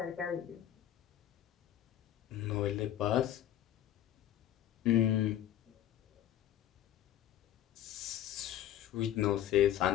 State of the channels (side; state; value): right; quieter; 11.8 dB